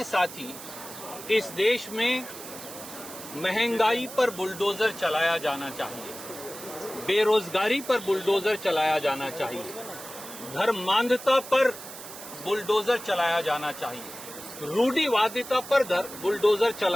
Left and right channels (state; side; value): noise; right; hiss, 13 dB below the sound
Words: साथी, इस देश में महंगाई पर बुलडोजर चलाया जाना चाहिए, बेरोजगारी पर बुलडोजर चलाया जाना चाहिए, धर्मांधता पर बुलडोजर चलाया जाना चाहिए, रूढ़िवादिता पर बुलडोजर